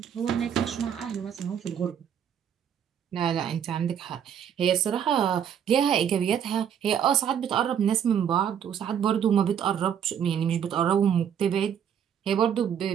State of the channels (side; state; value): left; quieter; 8.6 dB